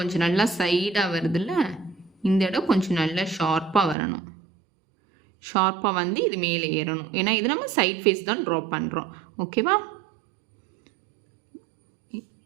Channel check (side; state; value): left; drops out; at 4.0 s